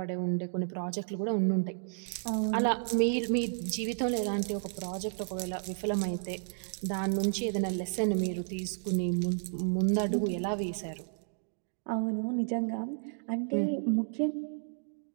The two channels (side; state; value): left; silent; digital silence